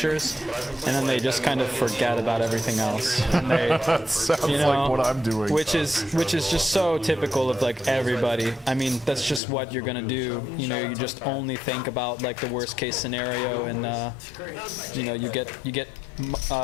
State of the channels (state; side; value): drops out; right; at 9.4 s